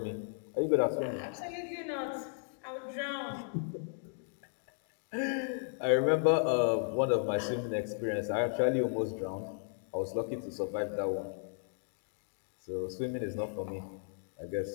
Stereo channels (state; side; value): silent; right; 54 dB below the other